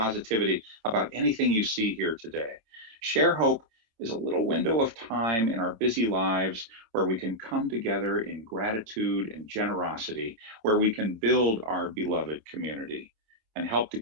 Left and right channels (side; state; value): left; late; 26 ms